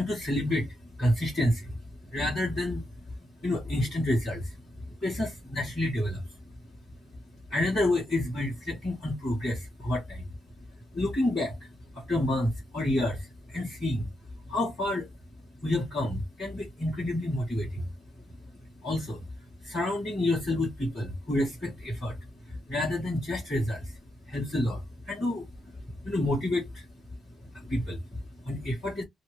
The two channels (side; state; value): both; normal; correlation 0.83